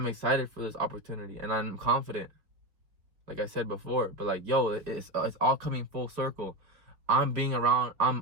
excited for this opportunity and I'm confident, like I said before. But like, yo, it's all coming full circle. I'm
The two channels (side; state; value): left; late; 4.8 ms